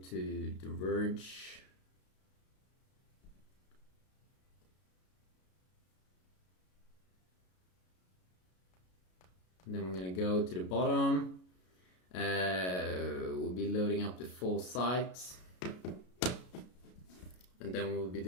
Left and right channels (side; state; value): right; late; 33 ms